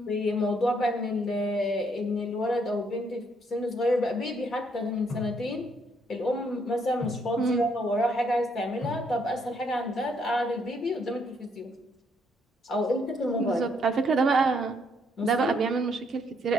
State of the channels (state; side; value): normal; both; correlation 0.71